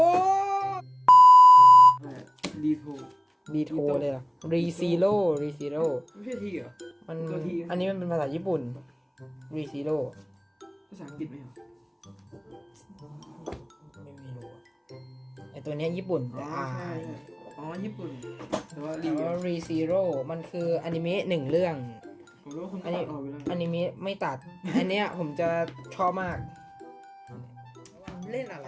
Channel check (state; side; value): identical; both; correlation 1.00